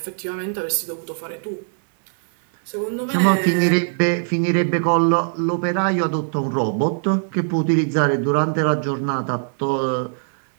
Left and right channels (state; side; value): silent; left; 60 dB below the other